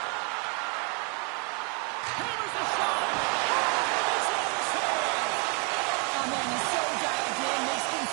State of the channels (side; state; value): left; quieter; 32.2 dB